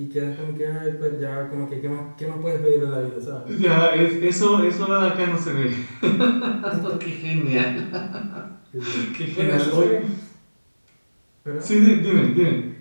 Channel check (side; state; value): both; inverted; correlation -1.00